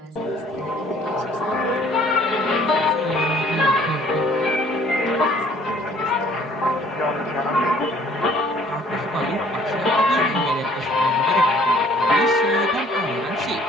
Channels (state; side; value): normal; both; correlation 0.57